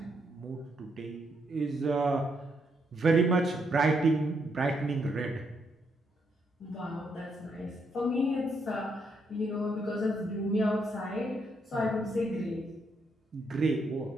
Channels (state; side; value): normal; both; correlation 0.77